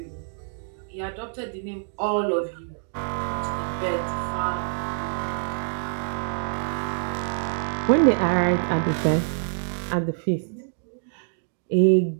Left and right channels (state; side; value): silent; left; digital silence